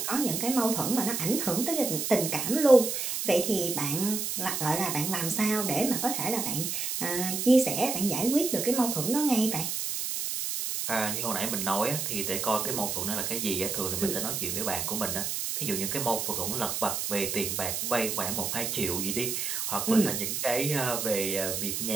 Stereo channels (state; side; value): noise; right; hiss, 2 dB below the sound